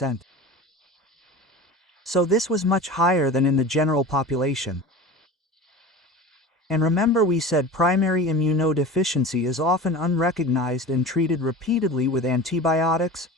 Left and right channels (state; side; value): normal; both; correlation 0.34